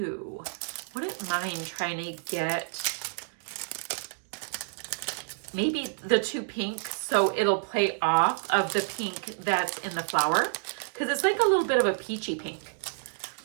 Wouldn't mind trying to get maybe the two pinks so it'll play off of the pink that's in the flower, because it's like a little bit of a peachy pink.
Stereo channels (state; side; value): silent; left; digital silence